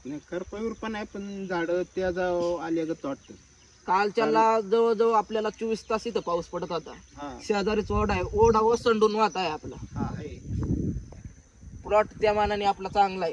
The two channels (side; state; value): both; identical; correlation 1.00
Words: नाही, करपावीर पण आहे, पण झाडं त्या आल्यागत वाटतं. कालच्याला जवळजवळ आपल्याला 24 तास इथं पाऊस पडत होता. शेजारीच ओढा आहे, ओढा ओसंडून वाहत आहे आपला. प्लॉट त्या मानाने आपला चांगला